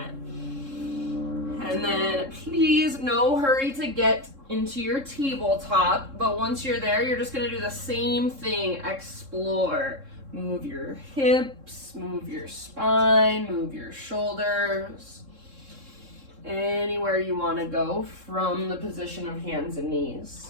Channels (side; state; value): left; late; 3.7 ms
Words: And then please, no hurry to get into your tabletop, but once you're there, you're just gonna do the same thing, explore. Move your hips, move your spine, move your shoulders. Anywhere you wanna go from the position of hands and knees.